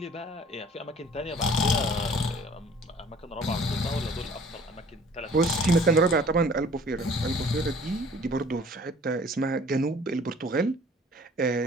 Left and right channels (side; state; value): both; normal; correlation 0.51